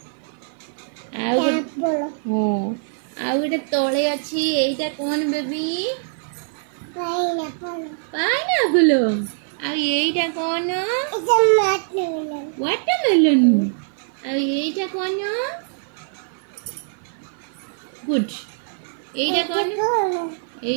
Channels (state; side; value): silent; left; 57 dB below the other